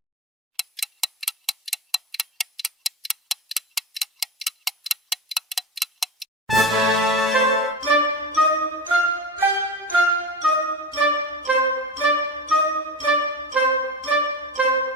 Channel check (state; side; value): normal; both; correlation 0.26